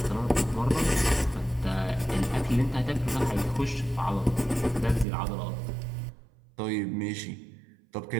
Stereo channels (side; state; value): left; drops out; at 5.1 s